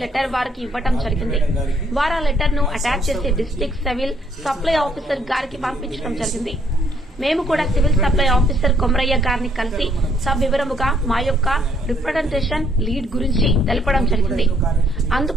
లెటర్ వారికి ఇవ్వడం జరిగింది. వారు ఆ లెటర్ ను అటాచ్ చేసి డిస్ట్రిక్ట్ సివిల్ సప్లై ఆఫీసర్ గారికి పంపించడం జరిగింది. మేము కూడా సివిల్ సప్లై ఆఫీసర్ కొమరయ్య గారిని కలిసి సవివరముగా మా యొక్క రిప్రజెంటేషన్ లీడ్ గురించి తెలపడం జరిగింది.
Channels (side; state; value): both; normal; correlation 0.67